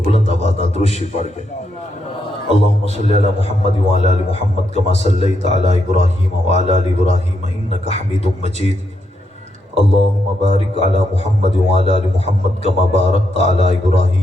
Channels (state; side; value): normal; both; correlation 0.80